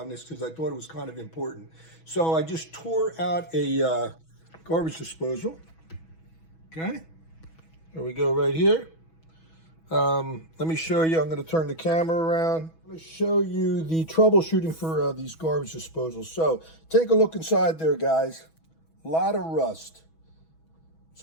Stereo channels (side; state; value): right; late; 6.2 ms